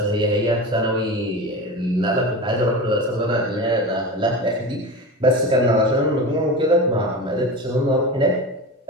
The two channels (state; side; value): normal; both; correlation 0.28